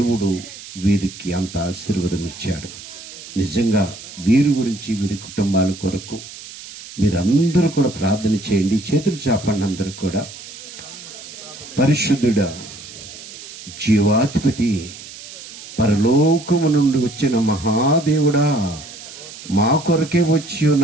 వీరికి అంత ఆశీర్వాదం ఇచ్చాడు. నిజంగా వీరి గురించి, వీరి కుటుంబాల కొరకు మీరందరూ కూడా ప్రార్థన చేయండి. చేతులు చాపండి అందరూ కూడా. పరిశుద్ధుడా, జీవాధిపతి, పరలోకము నుండి వచ్చిన మహాదేవుడా, మా కొరకే వచ్చి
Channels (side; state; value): right; noise; hiss, 15 dB below the sound